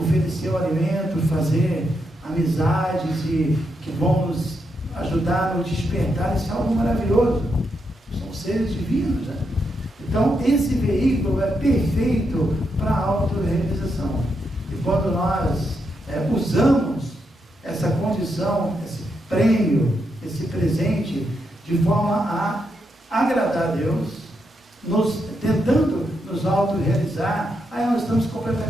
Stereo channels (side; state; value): both; normal; correlation 0.82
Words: o alimento, fazer amizades que vão nos ajudar no despertar. Isso é algo maravilhoso. São seres divinos, né? Então, esse veículo é perfeito para a autorrealização. E quando nós usamos essa condição, esse prêmio, esse presente, de forma a agradar a Deus, tentando nos autorrealizar, aí nós estamos